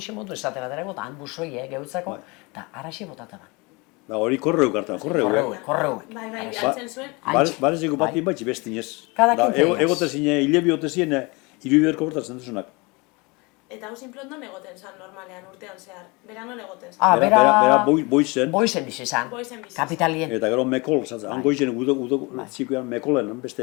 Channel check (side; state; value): right; quieter; 26.9 dB